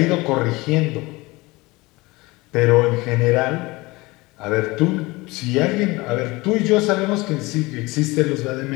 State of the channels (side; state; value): right; quieter; 22.4 dB